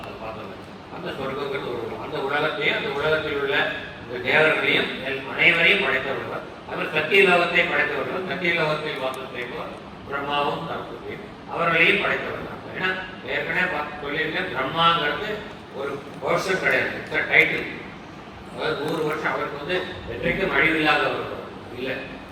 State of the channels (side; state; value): both; identical; correlation 1.00